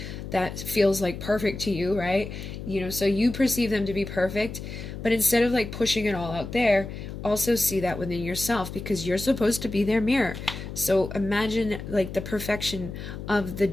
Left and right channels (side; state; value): left; noise; hum, 9 dB below the sound